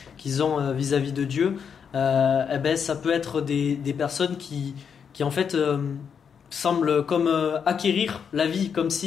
qu'ils ont vis-à-vis de Dieu, ça peut être des personnes qui en fait semblent comme acquérir la vie, comme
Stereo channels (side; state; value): right; quieter; 7.0 dB